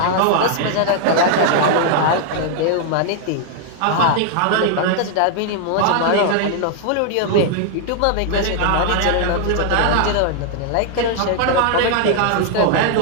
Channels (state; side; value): different; both; correlation 0.00